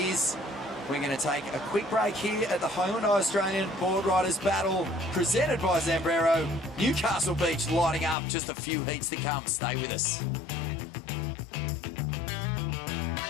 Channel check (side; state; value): right; drops out; at 8.2 s